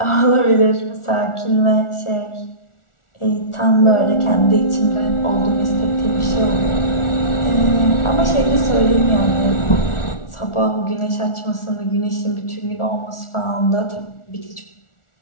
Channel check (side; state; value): right; late; 1.4 ms